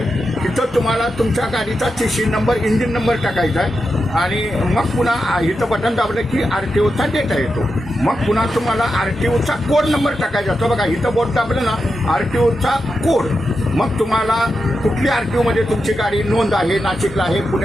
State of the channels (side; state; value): both; normal; correlation 0.88